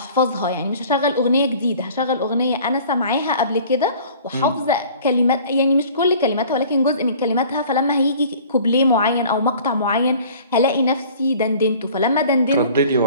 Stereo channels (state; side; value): inverted; both; correlation -0.48